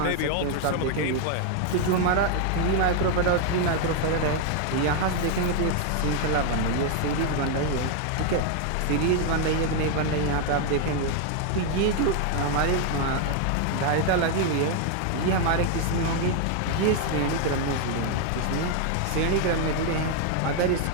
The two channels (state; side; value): different; both; correlation 0.00